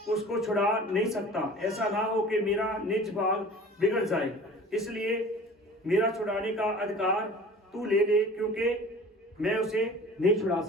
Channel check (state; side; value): normal; both; correlation 0.43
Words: उसको छुड़ा नहीं सकता, ऐसा ना हो कि मेरा निज भाग बिगड़ जाए, इसलिए मेरा छुड़ाने का अधिकार तू ले ले, क्योंकि मैं उसे नहीं छुड़ा